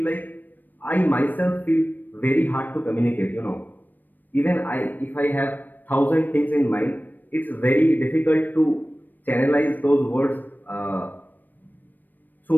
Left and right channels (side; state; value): right; late; 0.089 ms